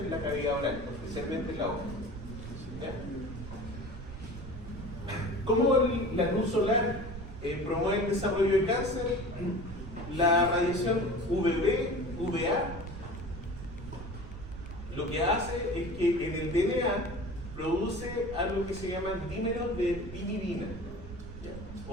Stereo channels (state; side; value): noise; right; rumble, 11 dB below the sound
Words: en la cavidad oral, especialmente en la boca. ¿Ya? ¿Cómo la luz solar promueve el desarrollo de cáncer? La radiación UVB, UVA, lo que hace es que en el DNA produce algo que se llama dímeros de pirimidina, ¿ya?